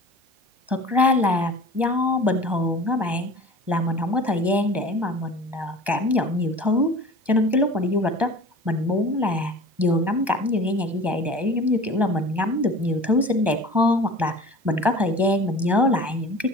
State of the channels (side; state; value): left; late; 1.2 ms